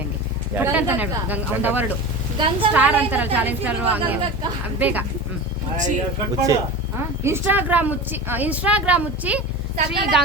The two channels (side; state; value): both; normal; correlation 0.30